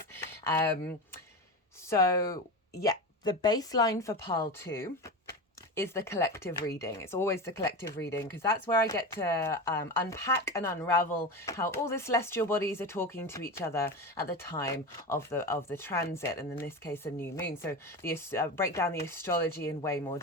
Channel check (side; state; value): both; normal; correlation 0.23